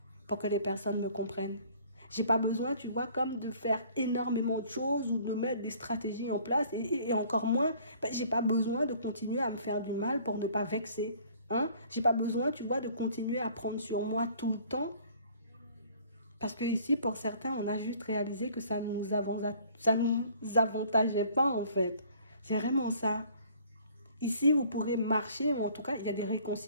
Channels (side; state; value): both; inverted; correlation -0.55